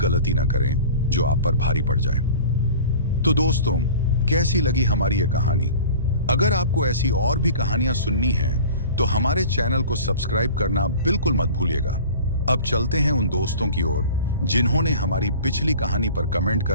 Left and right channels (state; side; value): inverted; both; correlation -0.41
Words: ना करें जो आप पर भारी पड़ जाए। तो दोस्तों, कैसी लगी हमारी ये कहानी? अगर आपको ऐसी और भी कहानियां सुननी हैं तो हमारे चैनल को सब्सक्राइब करना बिल्कुल मत भूलिएगा। अब चलते हैं उन दोस्तों की ओर जिन्होंने हमारी पिछली कहानी पर कमेंट